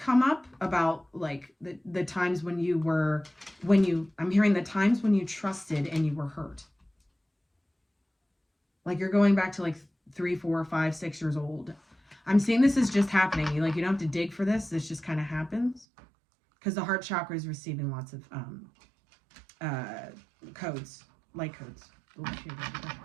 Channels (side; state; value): left; drops out; at 15.9 s